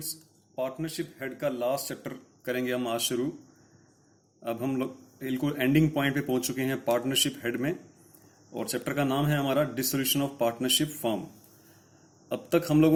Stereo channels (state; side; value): identical; both; correlation 1.00